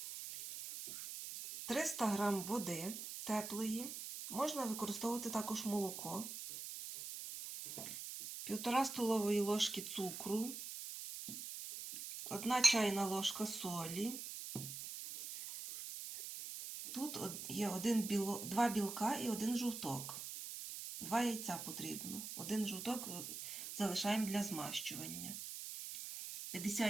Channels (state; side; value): noise; right; hiss, 7 dB below the sound